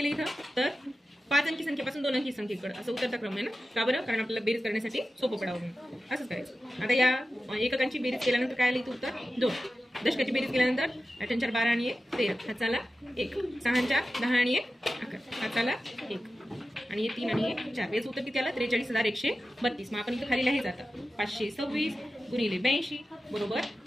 इथं, तर 5 अंकी संख्येपासून 2 अंकी संख्येकडे असं उतरता क्रम आहे ना, का बरं, कारण आपल्याला बेरीज करण्यासाठी सोपं पडावं म्हणून असंच करायचं। आता या एककांची बेरीज केल्यानंतर काय आलं इथं उत्तर 2। दशकाची बेरीज केल्यानंतर 8 × 4 आणि 1 13, हाताला 1, 6 × 4 10 आणि 1 11, हाताला 1 आणि 3 आणि 1 4। याचं उत्तर किती आलं, 43,132। मग आपण इथं खाली लिहायचं आता 526 गुणिले 82 बरोबर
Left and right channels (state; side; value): normal; both; correlation 0.93